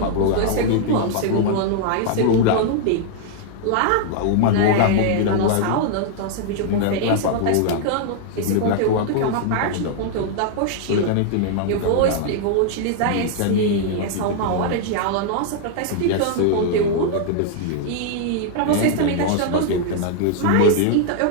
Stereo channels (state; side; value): different; both; correlation -0.01